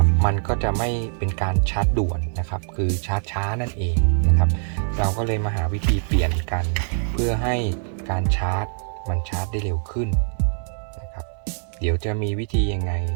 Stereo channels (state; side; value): silent; left; 61 dB below the other